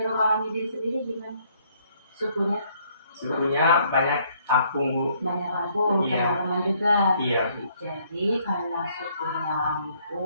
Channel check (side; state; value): both; inverted; correlation -0.67